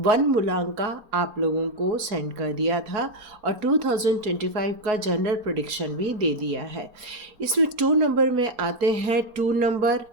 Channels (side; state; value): left; late; 4.3 ms